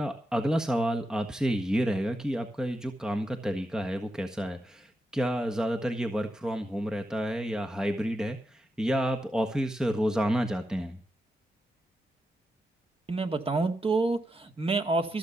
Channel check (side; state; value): both; normal; correlation 0.87